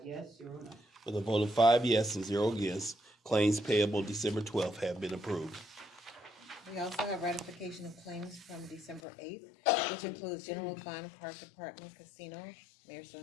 yes, 0 no. With a vote of 5 yes and 0 against, claims payable December 12th have been approved. We also have ratification of claims from December 8th, which includes general fund, park department, casino, mayor's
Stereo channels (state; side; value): drops out; right; at 9.0 s